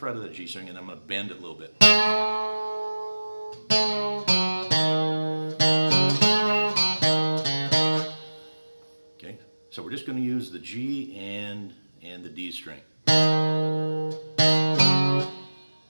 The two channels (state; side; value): inverted; both; correlation -1.00